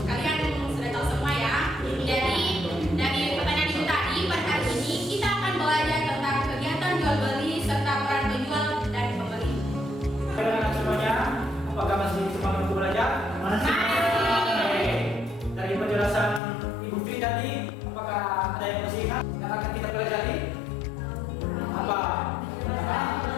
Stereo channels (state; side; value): drops out; right; at 16.4 s